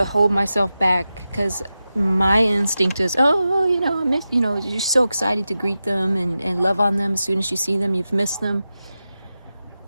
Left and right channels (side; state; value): both; inverted; correlation -0.92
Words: hold myself back because my instinct is, I miss, you're so excited to greet them and love on them. As soon as you see them, you've missed them.